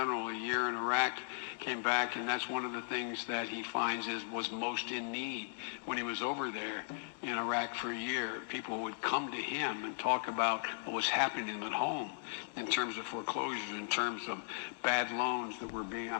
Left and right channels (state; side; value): silent; right; digital silence